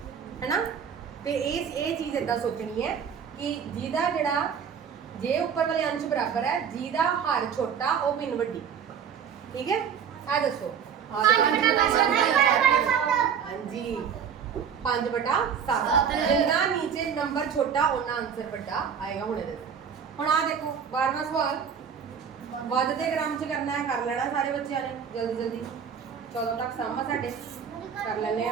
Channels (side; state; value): left; quieter; 7.4 dB